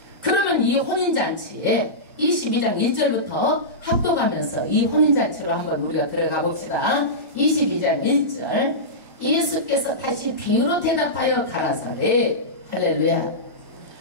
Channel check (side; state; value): left; late; 1.2 ms